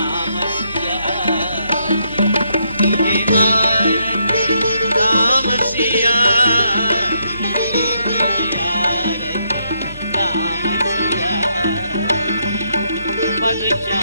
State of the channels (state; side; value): inverted; both; correlation -0.76